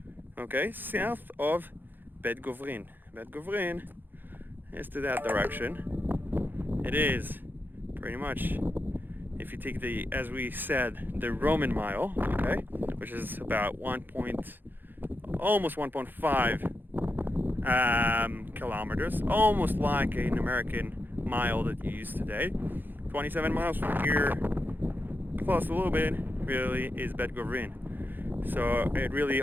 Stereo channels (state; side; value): late; left; 0.092 ms